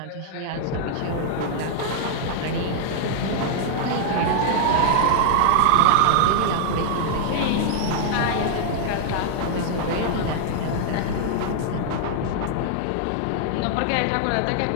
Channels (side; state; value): both; different; correlation -0.01